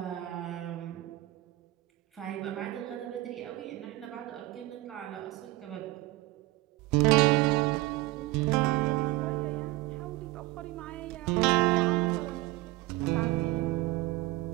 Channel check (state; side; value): quieter; left; 19.2 dB